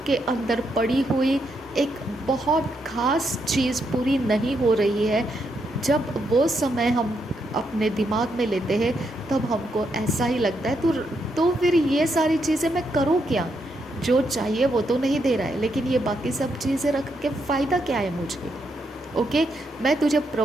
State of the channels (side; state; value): both; normal; correlation 0.79